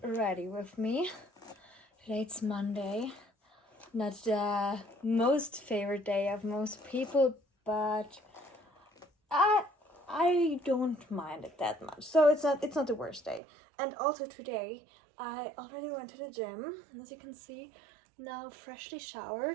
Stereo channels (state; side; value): drops out; left; at 13.4 s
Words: ready with me. Today it's Monday. Not the most favorite day of most people, but I don't mind it that much. So it's not the worst day. And also today I already went to the gym, as you can see. Now freshly